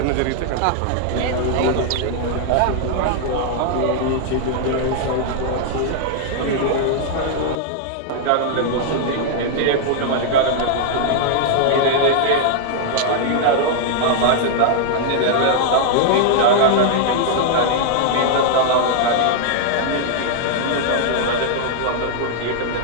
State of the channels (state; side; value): different; both; correlation -0.01